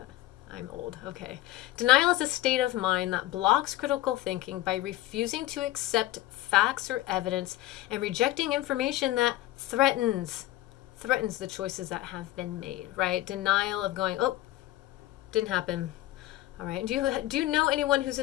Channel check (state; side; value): quieter; right; 15.8 dB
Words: I'm old. Okay. Denial is a state of mind that blocks critical thinking by refusing to accept facts or evidence and rejecting information that threatens the choices that have been made, right? Denial of going, oh, didn't happen. All right. Do you know anyone who's